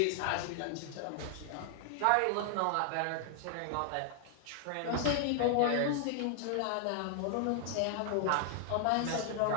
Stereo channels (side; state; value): both; different; correlation 0.00